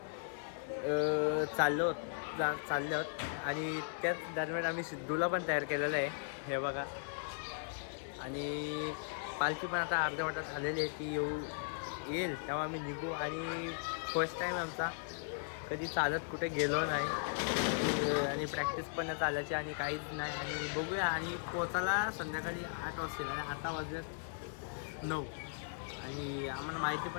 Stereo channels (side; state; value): right; silent; digital silence